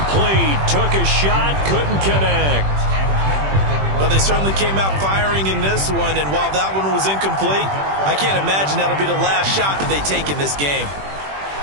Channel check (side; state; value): left; late; 21 ms